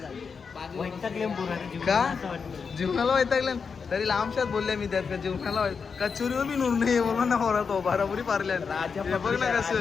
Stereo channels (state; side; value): quieter; right; 5.6 dB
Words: जीवनाला वैतागले तरी लांबशात बोलले मी त्यात का जीवनाला कचोरी व भी नूर नाही बोलला ना पोरा तो बराबरी पारल्या. बघ ना